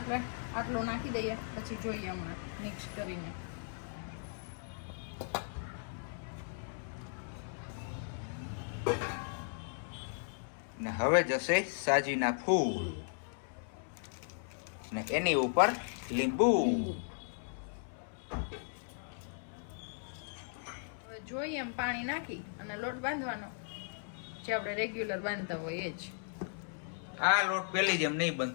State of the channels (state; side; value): silent; right; 53 dB below the other